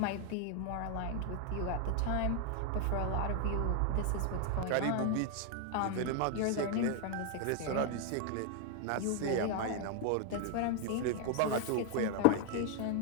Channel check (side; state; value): both; different; correlation 0.00